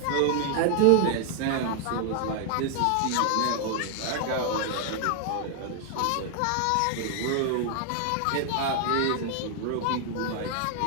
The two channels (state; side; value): different; both; correlation 0.00